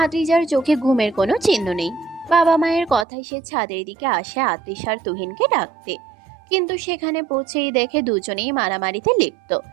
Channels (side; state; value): left; drops out; at 3.1 s